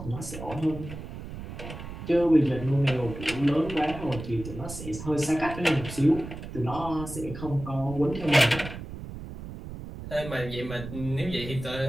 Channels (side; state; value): right; noise; rumble, 10 dB below the sound